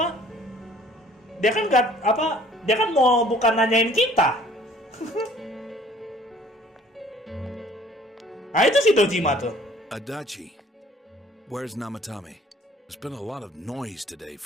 Dia kan gak apa? Dia kan mau bukan nanyain kita. Nah itu si Dojima tuh. Adachi, where's Namatame? There's been a lot of noise today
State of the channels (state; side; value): normal; both; correlation 0.54